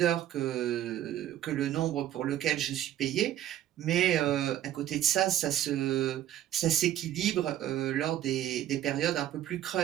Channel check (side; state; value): left; quieter; 12.0 dB